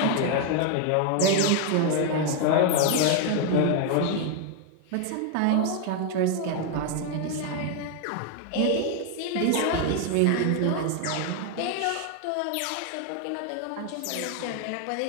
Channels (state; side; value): different; both; correlation 0.01